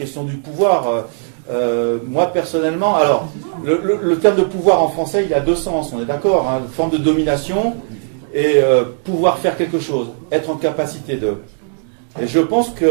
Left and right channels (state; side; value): silent; left; digital silence